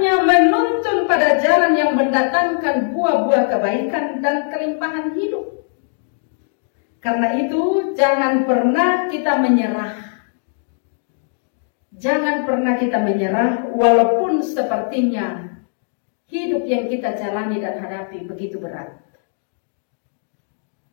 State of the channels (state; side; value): silent; right; digital silence